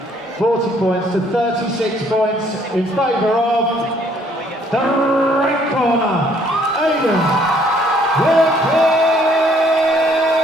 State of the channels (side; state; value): both; normal; correlation 0.63